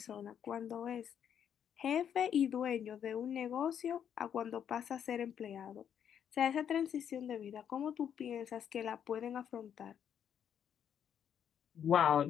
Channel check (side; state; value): right; quieter; 8.8 dB